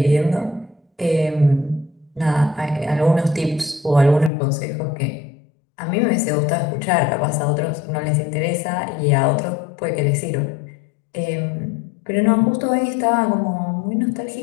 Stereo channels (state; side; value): drops out; right; at 4.3 s